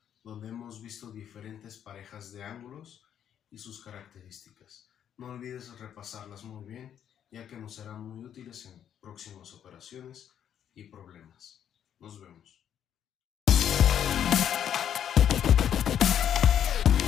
donde hemos visto diferentes parejas de ángulos y sus características. No olvides repasarlas muy bien, ya que nos serán muy útiles en próximas operaciones y problemas. Nos vemos.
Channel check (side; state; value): right; quieter; 9.5 dB